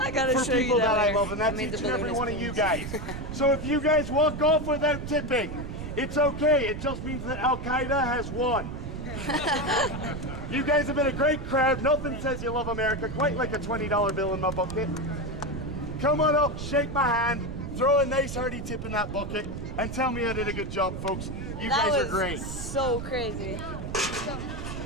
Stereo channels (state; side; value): noise; right; rumble, 7 dB below the sound